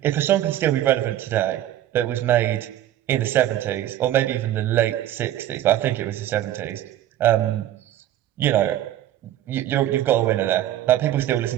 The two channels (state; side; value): quieter; left; 12.6 dB